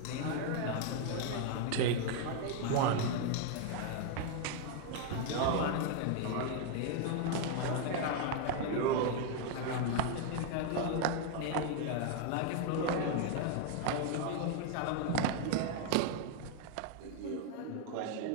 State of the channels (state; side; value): different; both; correlation 0.01